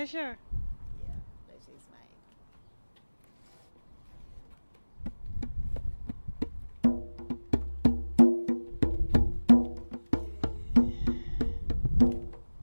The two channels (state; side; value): inverted; both; correlation -1.00